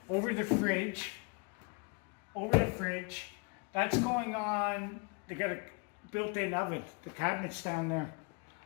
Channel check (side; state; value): right; quieter; 32.8 dB